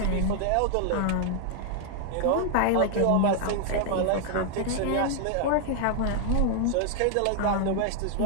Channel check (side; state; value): both; different; correlation 0.00